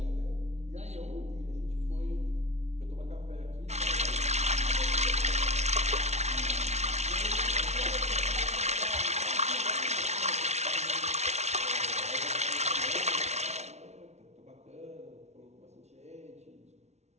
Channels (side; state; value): left; late; 0.32 ms